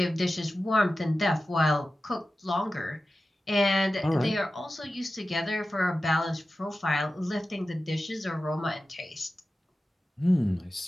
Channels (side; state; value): both; normal; correlation 0.94